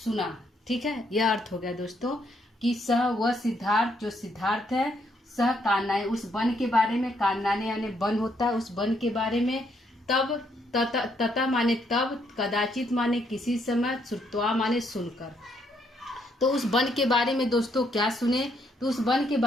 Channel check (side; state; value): both; normal; correlation 0.73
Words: सुना। ठीक है। यह अर्थ हो गया दोस्तों कि सह वह सिद्धार्थ, जो सिद्धार्थ है, सह कालनाएं, उस वन के बारे में, कालनाने यानी वन होता है, उस वन के बारे में, तब, ततः माने तब, कदाचित माने किसी समय, श्रुत्वा माने सुनकर। तो उस वन के बारे में दोस्तों क्या सुने? तो उस वन के